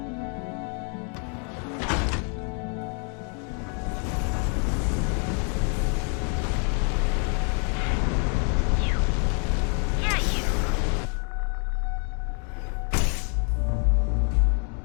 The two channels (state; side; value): quieter; right; 39.7 dB